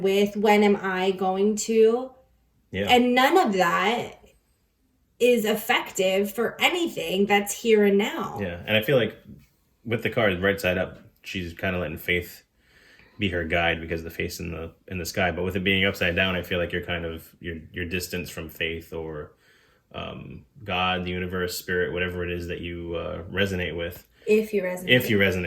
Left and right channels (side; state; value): both; identical; correlation 1.00